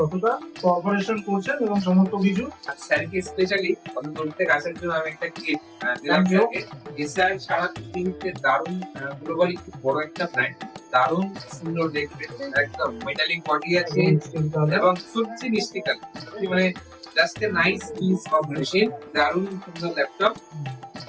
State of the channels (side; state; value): both; identical; correlation 1.00